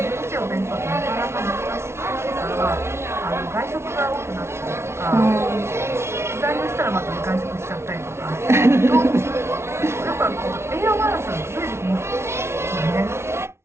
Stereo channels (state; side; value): late; left; 0.13 ms